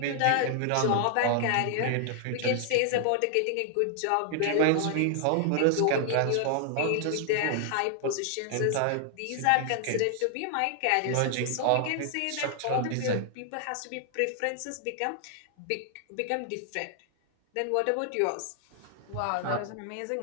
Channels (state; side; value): different; both; correlation 0.00